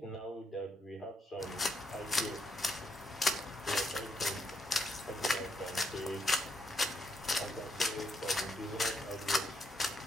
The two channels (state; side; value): normal; both; correlation 0.76